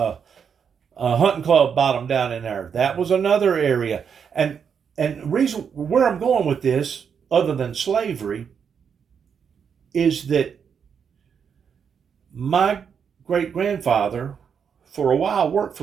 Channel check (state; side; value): quieter; left; 7.0 dB